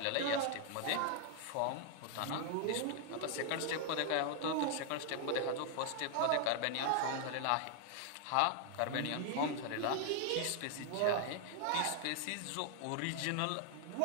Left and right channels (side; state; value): both; different; correlation 0.00